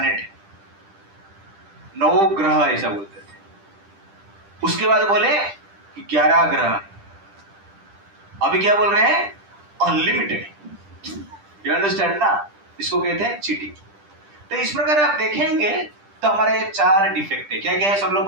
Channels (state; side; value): late; left; 10 ms